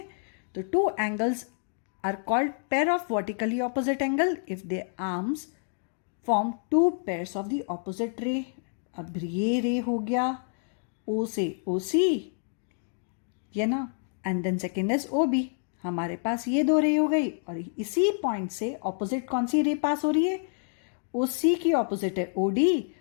तो two angles are called pair of vertically opposite angle if they arms form two pairs of the opposite ray. अब ये रे हो गया O से OC, ये ना, and then second is OB. हमारे पास ये दो रे हो गई और इसी पॉइंट से ऑपोजिट कौन सी रे पास हो रही है, OC की ऑपोजिट है OD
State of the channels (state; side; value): silent; right; 59 dB below the other